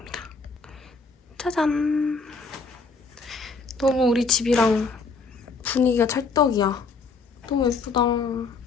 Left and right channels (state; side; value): quieter; right; 4.3 dB